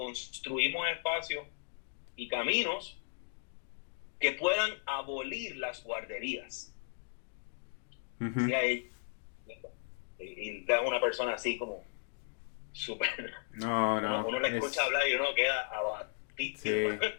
espacios y caminos que puedan abolir las guarderías. Uh-huh. Y es una persona así como súper... No. Uno le escucha hablar y uno queda abatido. Sí,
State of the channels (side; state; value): right; silent; digital silence